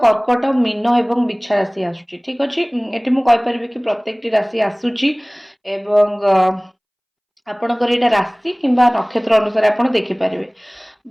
कर्कट मीन एवं बिछा राशि आसूची ठीक अच्छे ये मुझे कि प्रत्येक राशि आसूची एवं आपणकर यहाँ राशि कि नक्षत्र अनुसार आप देखिपारे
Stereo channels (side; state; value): both; identical; correlation 1.00